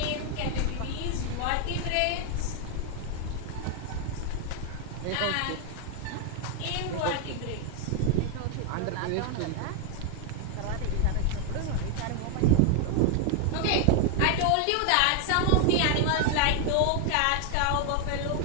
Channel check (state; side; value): different; both; correlation 0.01